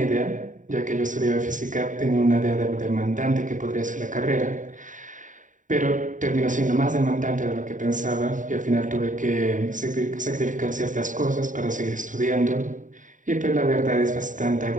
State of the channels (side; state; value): left; late; 0.37 ms